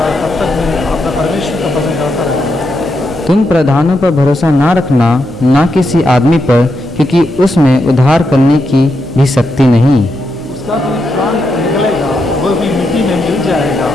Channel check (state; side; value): normal; both; correlation 0.83